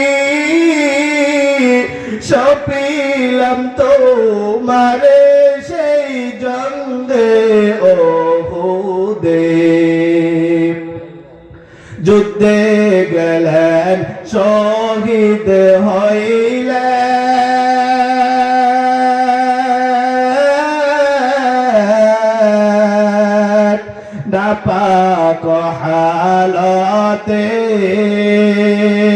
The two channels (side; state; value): both; identical; correlation 1.00